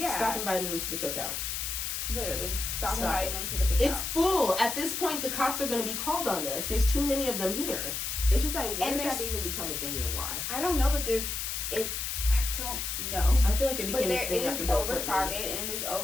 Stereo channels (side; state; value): left; noise; hiss, 3 dB below the sound